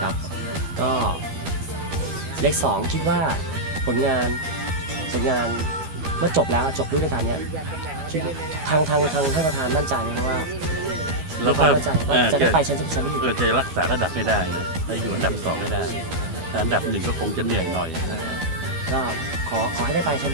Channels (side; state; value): left; late; 13 ms